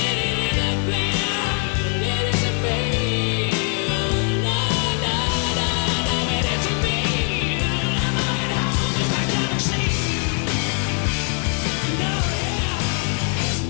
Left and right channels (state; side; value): quieter; right; 39.9 dB